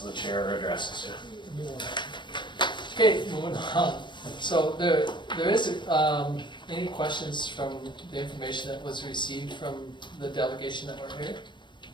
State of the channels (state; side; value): late; right; 0.23 ms